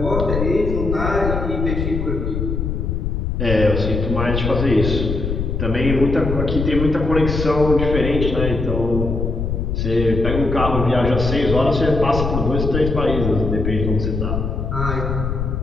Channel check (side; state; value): left; noise; rumble, 2 dB below the sound